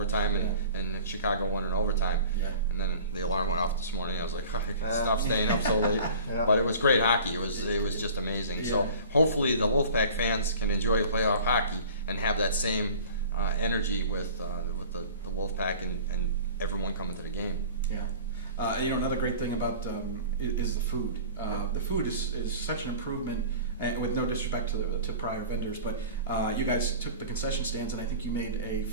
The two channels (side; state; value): both; inverted; correlation -0.42